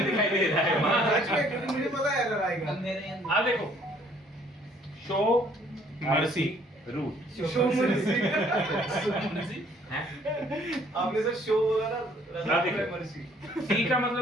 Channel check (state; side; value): normal; both; correlation 0.61